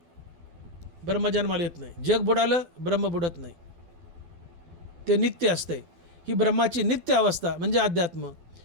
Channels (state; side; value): late; left; 12 ms